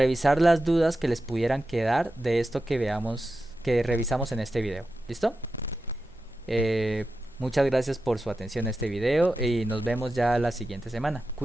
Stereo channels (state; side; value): normal; both; correlation 0.91